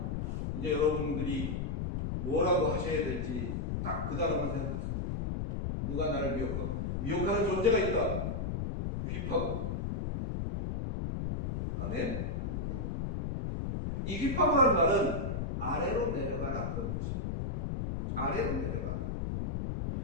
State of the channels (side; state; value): left; noise; rumble, 2 dB below the sound